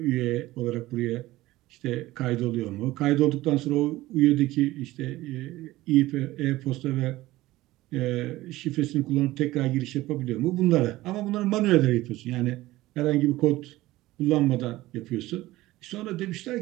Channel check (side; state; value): left; quieter; 17.5 dB